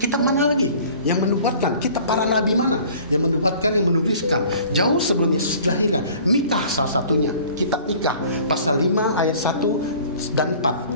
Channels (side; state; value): both; inverted; correlation -0.49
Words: mana lagi yang menubuatkan? Kitab para nabi mana yang menubuatkan, yang menuliskan jauh sebelum Yesus dilahirkan? Mika salah satunya. Kitab Mika pasal 5 ayat 1 dan